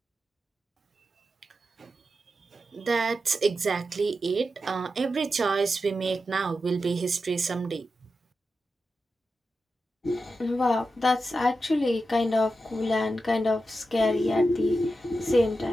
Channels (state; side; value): normal; both; correlation 0.89